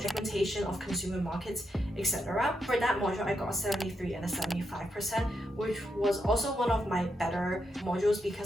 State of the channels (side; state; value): both; normal; correlation 0.83